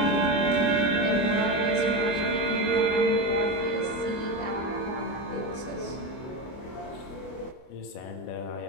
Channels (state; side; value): late; right; 24 ms